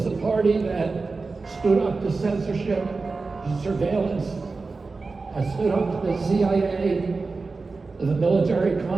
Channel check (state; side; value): quieter; left; 4.0 dB